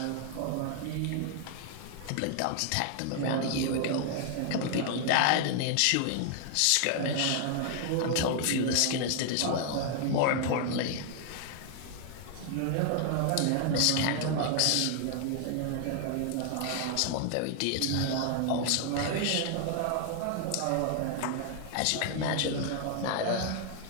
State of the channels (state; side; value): different; both; correlation 0.00